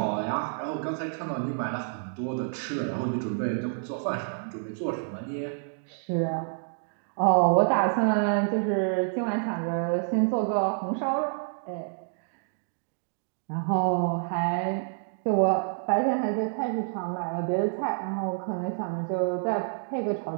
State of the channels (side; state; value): left; silent; digital silence